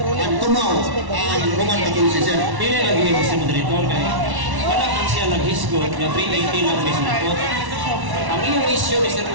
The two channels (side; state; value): left; late; 1.1 ms